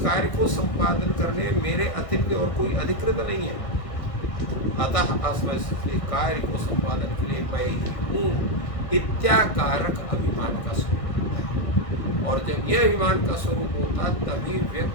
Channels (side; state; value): right; late; 1.6 ms